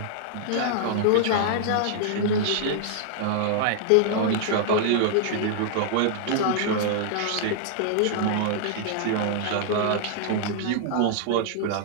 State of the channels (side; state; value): both; different; correlation -0.01